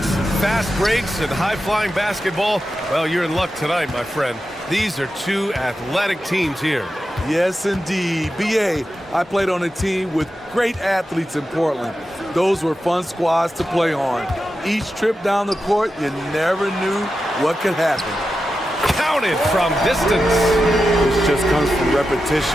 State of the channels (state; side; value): normal; both; correlation 0.90